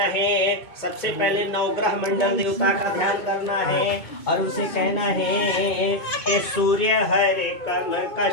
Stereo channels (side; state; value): right; late; 2.2 ms